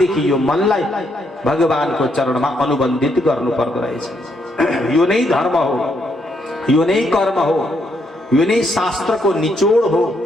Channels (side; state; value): both; normal; correlation 0.75